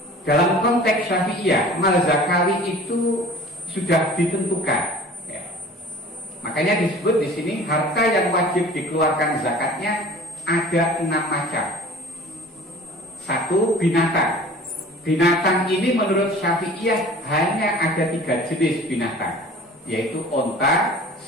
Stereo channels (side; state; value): both; normal; correlation 0.44